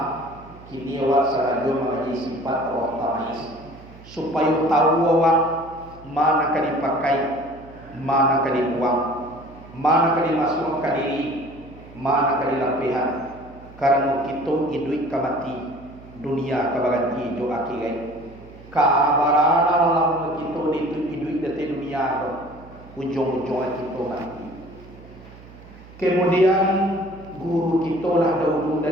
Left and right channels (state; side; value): noise; right; hum, 20 dB below the sound